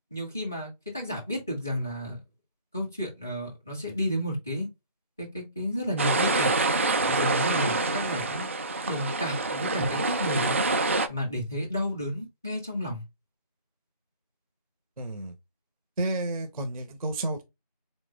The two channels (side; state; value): both; inverted; correlation -0.42